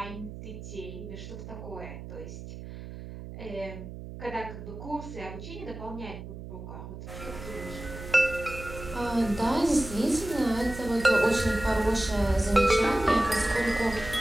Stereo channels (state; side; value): noise; right; hum, 11 dB below the sound